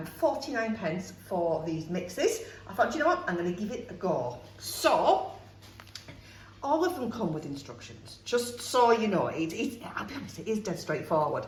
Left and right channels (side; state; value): both; identical; correlation 1.00